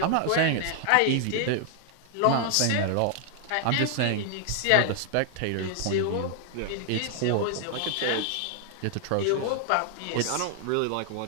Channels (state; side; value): different; both; correlation 0.00